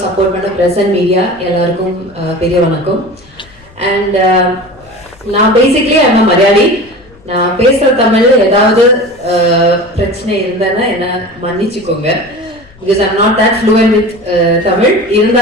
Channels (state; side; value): noise; left; rumble, 26 dB below the sound